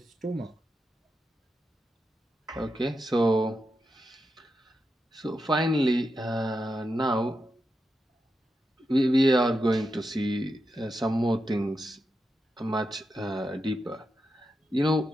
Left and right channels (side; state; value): both; normal; correlation 0.87